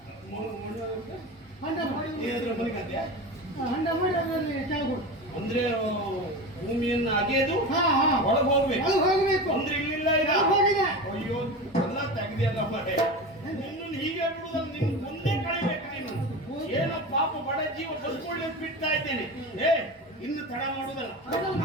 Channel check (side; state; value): both; normal; correlation 0.27